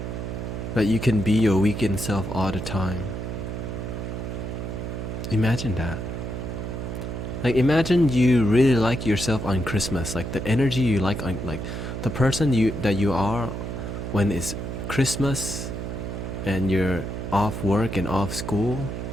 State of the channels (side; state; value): right; noise; hum, 5 dB below the sound